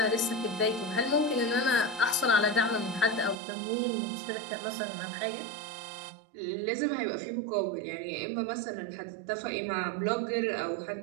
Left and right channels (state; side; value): drops out; left; at 3.4 s